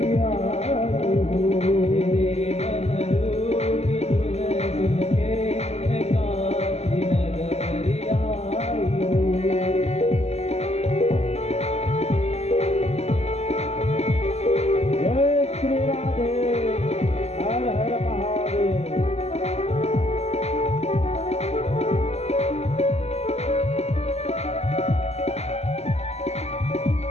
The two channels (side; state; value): right; late; 0.31 ms